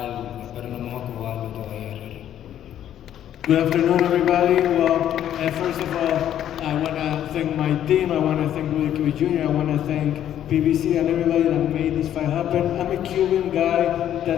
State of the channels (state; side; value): quieter; right; 10.9 dB